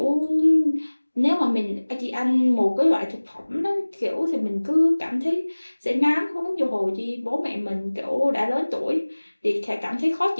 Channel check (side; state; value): both; inverted; correlation -1.00